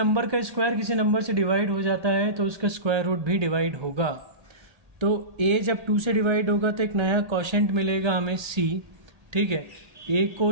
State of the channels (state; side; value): late; left; 1.8 ms